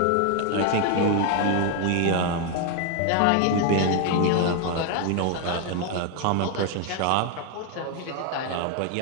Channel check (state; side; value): different; both; correlation 0.01